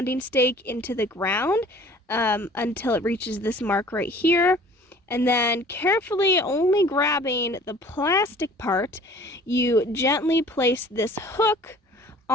stake into the ground until it reaches this mark right here. And then carefully, only grabbing the plastic part, you gently place this hook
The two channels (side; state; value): both; normal; correlation 0.49